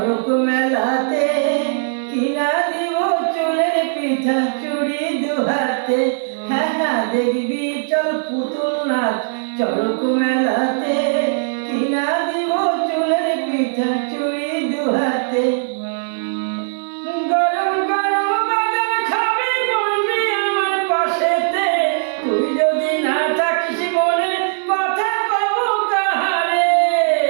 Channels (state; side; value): silent; left; digital silence